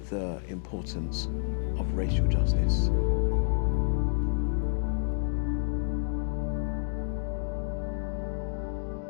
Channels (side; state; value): right; silent; digital silence